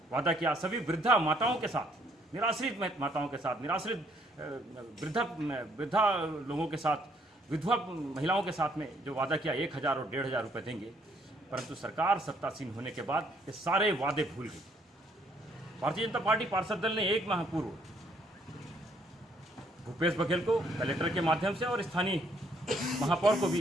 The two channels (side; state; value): both; normal; correlation 0.67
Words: वादा किया। सभी वृद्धा माताओं के साथ, निराश्रित माताओं के साथ, निराश्रित वृद्धा लोगों के साथ, विधवा महिलाओं के साथ में जो वादा किया 1000 और 1500 रुपये देंगे। परंतु सरकार सत्तासीन होने के बाद ये सारे वादे भूल गई। भारतीय जनता पार्टी पार्षद दल ने 1 माह पूर्व भूपेश बघेल को कलेक्टर के माध्यम से और स्थानीय महापौर को भी